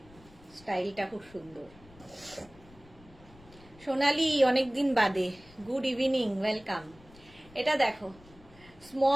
স্টাইলটা খুব সুন্দর। সোনালি অনেকদিন বাদে, গুড ইভিনিং, ওয়েলকাম। এটা দেখো,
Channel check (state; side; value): noise; left; rumble, 24 dB below the sound